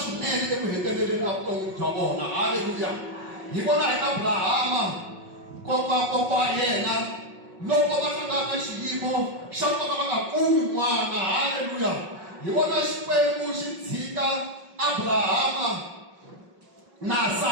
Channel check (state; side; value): late; left; 5.5 ms